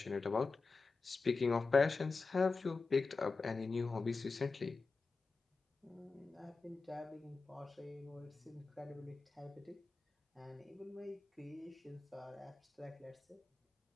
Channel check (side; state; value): right; quieter; 4.1 dB